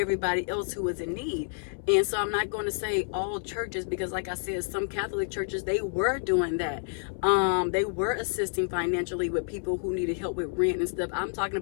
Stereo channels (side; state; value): right; silent; 59 dB below the other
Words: else who was in need. And so I'm not going to say all churches, because like I said, some Catholic churches, they were doing that. They were assisting financially with people who needed help with rent and stuff. I'm talking